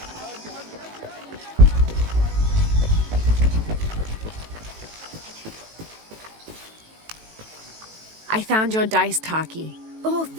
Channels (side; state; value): left; late; 18 ms